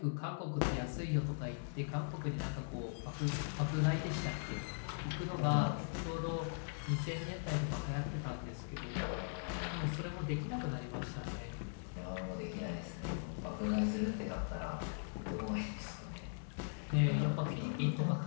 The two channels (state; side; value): silent; right; 51 dB below the other